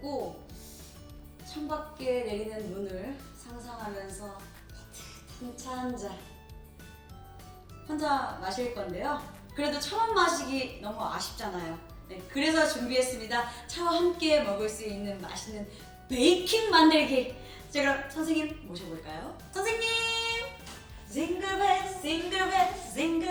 창밖에 내리는 눈을 상상하면서 따뜻한 차 한 잔 혼자 마실 건데요. 그래도 처음 마시기 너무 아쉽잖아요. 네, 그래서 준비했습니다. 차와 함께 먹을 수 있는 맛있는 베이킹 만들기. 자, 그럼 선생님 모셔볼까요? 선생님! 징글벨 징글벨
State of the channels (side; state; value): both; identical; correlation 1.00